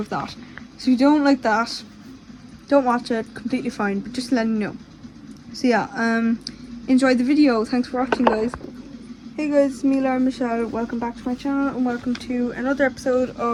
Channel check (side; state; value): both; identical; correlation 1.00